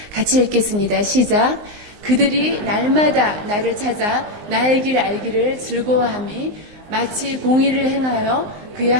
같이 읽겠습니다. 시작. 그들이 날마다 나를 찾아 나의 길 알기를 즐거워함이 마치 공의를 행하여 그의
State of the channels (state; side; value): late; left; 19 ms